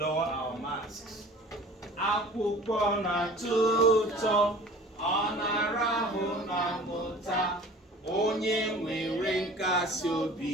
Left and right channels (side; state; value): both; normal; correlation 0.45